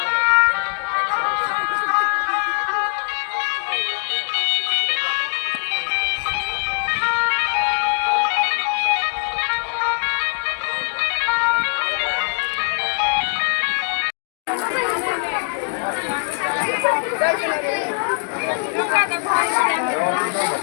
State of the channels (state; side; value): silent; right; 58 dB below the other